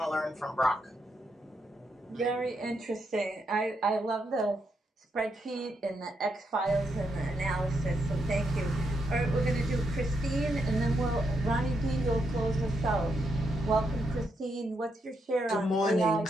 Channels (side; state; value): both; normal; correlation 0.80